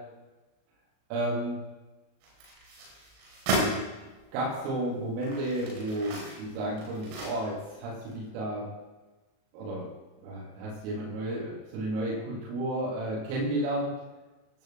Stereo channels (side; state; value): left; late; 37 ms